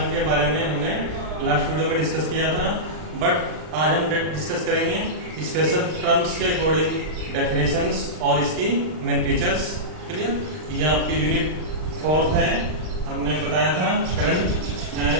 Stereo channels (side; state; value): left; late; 39 ms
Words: के बारे में हमने लास्ट वीडियो में डिस्कस किया था। बट आज हम डिस्कस करेंगे स्पेशल टर्म्स के अकॉर्डिंग डेफिनेशंस और इसकी मेन फीचर्स। क्लियर? ये आपकी यूनिट 4 है। हमने बताया था करंट,